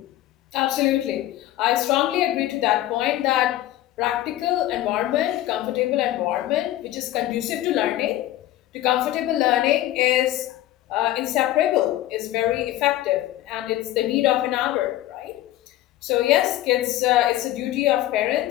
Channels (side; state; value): right; quieter; 14.5 dB